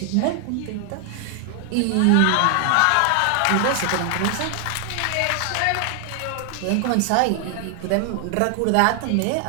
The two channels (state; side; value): different; both; correlation 0.00